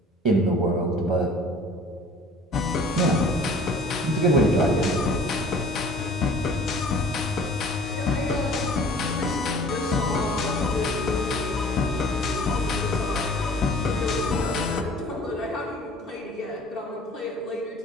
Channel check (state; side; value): normal; both; correlation 0.48